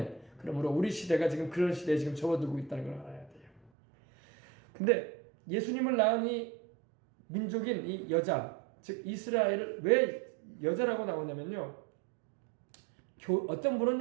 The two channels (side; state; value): left; drops out; at 3.7 s